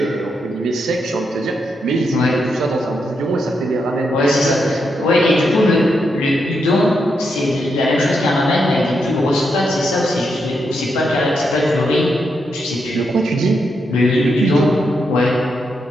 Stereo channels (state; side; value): normal; both; correlation 0.82